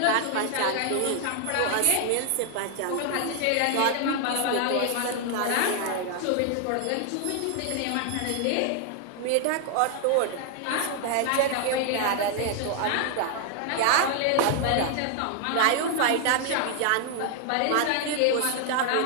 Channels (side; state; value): both; different; correlation 0.00